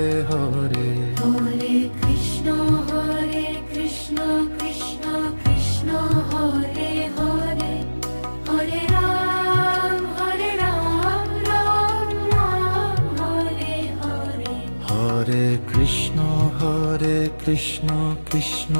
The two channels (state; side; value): inverted; both; correlation -1.00